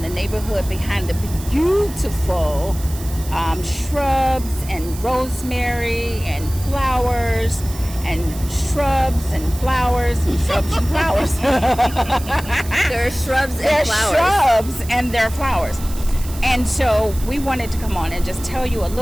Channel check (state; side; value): noise; right; hiss, 15 dB below the sound